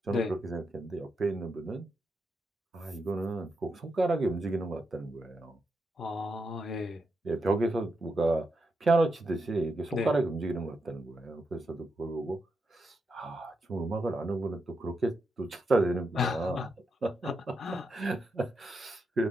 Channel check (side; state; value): both; normal; correlation 0.84